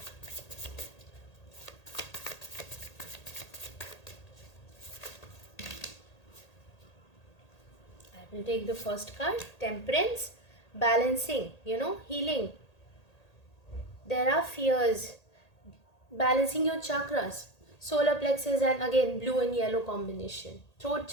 We'll take the first card, Temperance, balancing, healing. There are fears, balancing your chakras, solar plexus, and again blue and yellow combination, throat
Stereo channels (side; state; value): right; late; 1.8 ms